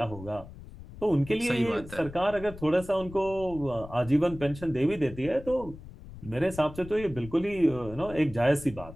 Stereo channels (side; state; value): left; noise; rumble, 15 dB below the sound